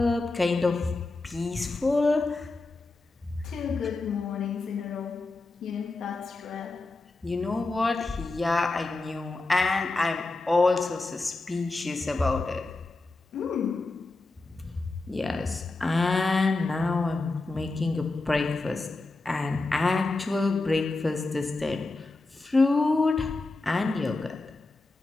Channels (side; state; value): right; quieter; 3.3 dB